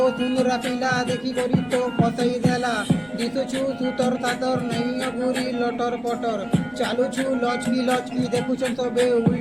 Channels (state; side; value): noise; left; rumble, 27 dB below the sound